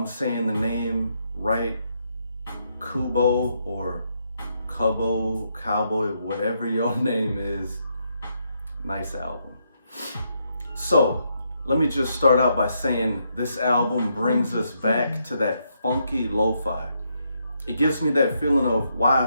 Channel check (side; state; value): both; inverted; correlation -0.78